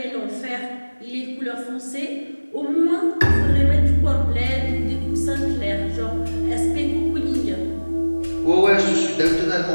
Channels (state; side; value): inverted; both; correlation -1.00